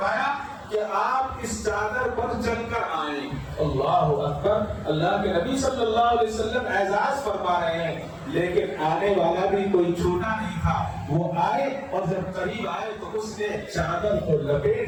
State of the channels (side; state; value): both; identical; correlation 1.00